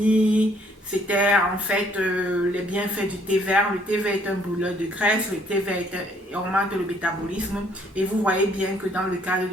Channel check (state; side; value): normal; both; correlation 0.64